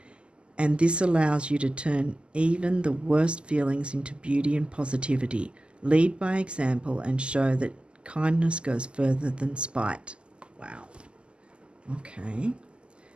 and this allows you to turn even the worst feelings into beauty and positivity. Lead by example and show that kindness goes further than spite. Wow. Okay.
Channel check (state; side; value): late; left; 0.051 ms